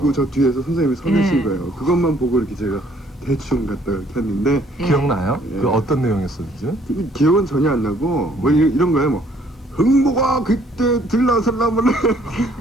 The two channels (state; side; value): normal; both; correlation 0.62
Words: 저 뒤에서 선생님이 서 계신 거예요. 그것만 보고 이렇게 제가 대충 갖다 이렇게 했는데 기억나요? 그 어떤 내용이었었지? 기억은 전혀 안 나고 뭐 이런 거예요. 뭐 흥보가 그때 들나설라면